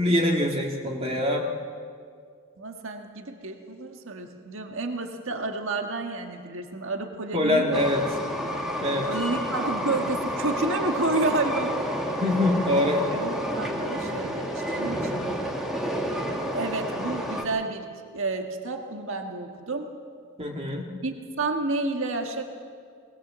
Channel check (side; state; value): both; normal; correlation 0.30